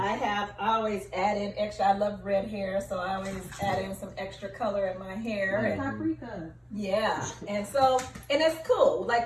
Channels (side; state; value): both; identical; correlation 1.00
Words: always add in extra. I love red hair, so I always add in some extra color in my hair. Like And, paprika. yeah, and it's cool.